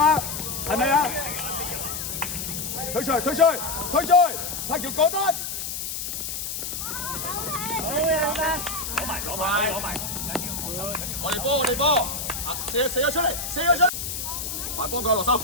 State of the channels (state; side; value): noise; left; hiss, 5 dB below the sound